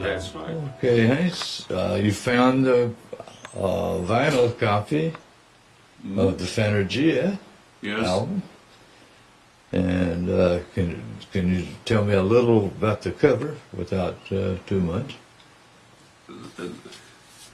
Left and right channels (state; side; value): identical; both; correlation 1.00